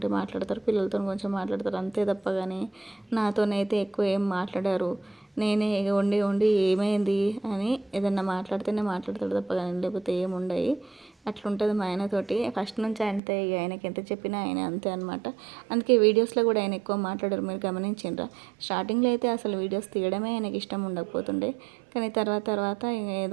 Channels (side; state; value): left; drops out; at 13.2 s